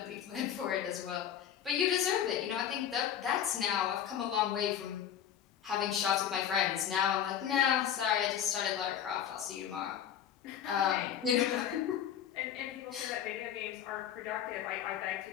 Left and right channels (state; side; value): quieter; right; 9.6 dB